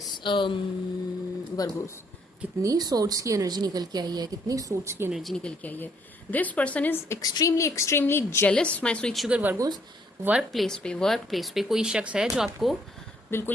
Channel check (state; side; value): normal; both; correlation 0.67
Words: Virgos. कितनी सोर्ट्स की एनर्जी निकल के आई है, कितनी सोर्ट्स की एनर्जी निकल के आई है। This person is extremely extremely jealous my sweet sugar Virgo's. Work place पे कोई शख्स है जो आपको